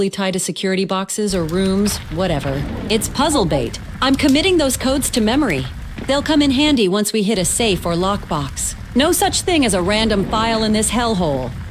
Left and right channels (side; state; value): both; identical; correlation 1.00